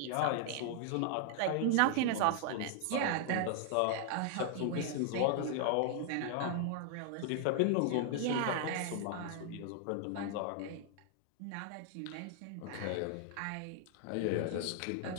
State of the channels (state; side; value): different; both; correlation 0.00